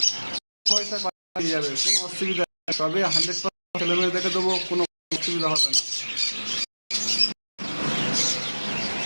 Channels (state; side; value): inverted; both; correlation -1.00